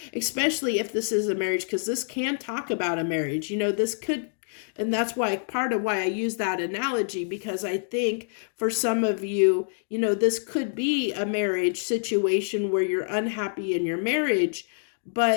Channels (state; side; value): silent; right; digital silence